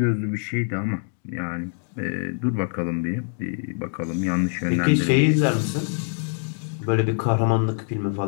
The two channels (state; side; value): silent; right; 58 dB below the other